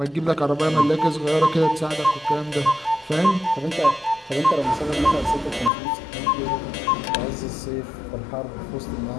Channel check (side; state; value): right; drops out; at 5.7 s